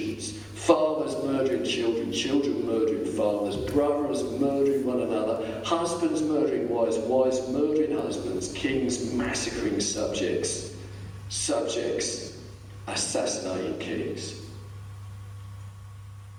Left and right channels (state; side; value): identical; both; correlation 1.00